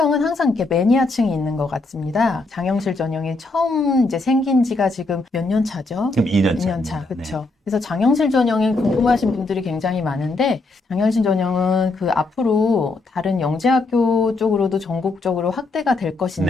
항상 이렇게 매니아층이 있는 것 같습니다. 장영실 전형이 처음 이제 생긴 지가 지금 몇 년 차죠? 지금 2년 2년 차입니다. 차, 그렇죠. 그래서 장영실 전형이 궁금하신 분들이 굉장히 많은데 장영실 전형은 그 앞으로 다른 영재학교 쪽으로도 전국적으로 확대가 될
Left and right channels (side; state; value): right; quieter; 3.3 dB